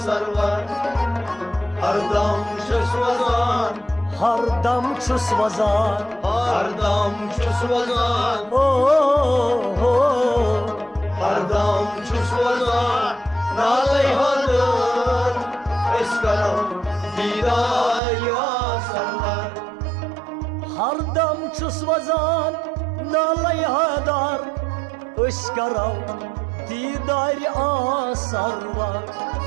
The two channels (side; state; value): left; drops out; at 18.0 s